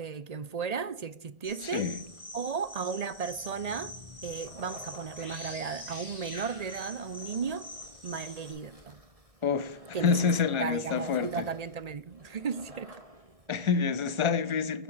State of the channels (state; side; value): late; left; 1.8 ms